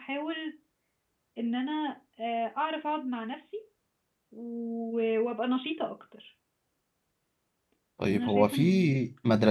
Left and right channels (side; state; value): both; identical; correlation 1.00